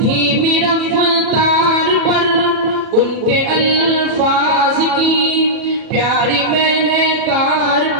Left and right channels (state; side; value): late; left; 37 ms